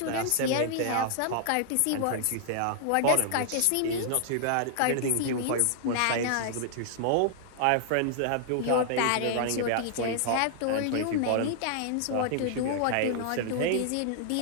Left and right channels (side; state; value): both; different; correlation -0.01